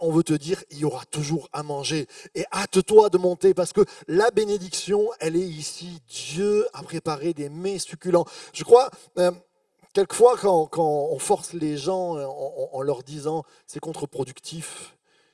on veut te dire, il y aura toujours à manger. Et hâte-toi de monter, parce que la bénédiction, elle est ici. Dieu a préparé des mets succulents. Je crois, quelquefois, quand on force les gens en leur disant c'est contre-productif,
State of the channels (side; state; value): both; identical; correlation 1.00